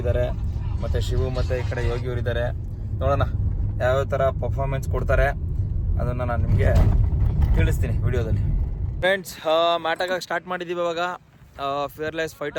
ಇದ್ದಾರೆ, ಮತ್ತು ಶಿವು ಮತ್ತು ಈ ಕಡೆ ಯೋಗಿ ಅವರು ಇದ್ದಾರೆ. ನೋಡೋಣ ಯಾವ್ಯಾವ ಥರ ಪರ್ಫಾರ್ಮೆನ್ಸ್ ಕೊಡ್ತಾರೆ ಅದನ್ನು ನಾನು ನಿಮಗೆ ತಿಳಿಸ್ತೀನಿ ವಿಡಿಯೋದಲ್ಲಿ. ಫ್ರೆಂಡ್ಸ್, ಮ್ಯಾಟ್ ಆಗೋಕ್ಕೆ ಸ್ಟಾರ್ಟ್ ಮಾಡಿದ್ದೀವಿ ಇವಾಗ. ಫಿಯರ್ಲೆಸ್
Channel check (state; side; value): identical; both; correlation 1.00